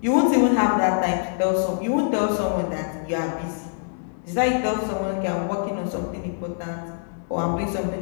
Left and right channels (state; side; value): silent; right; digital silence